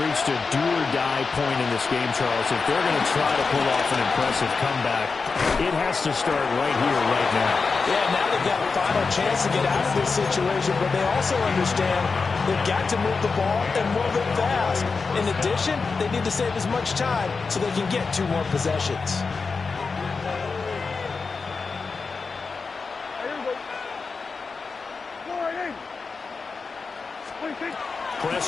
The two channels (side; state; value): right; quieter; 4.6 dB